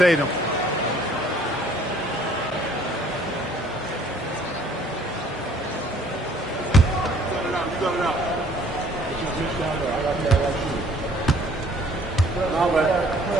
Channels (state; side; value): normal; both; correlation 0.58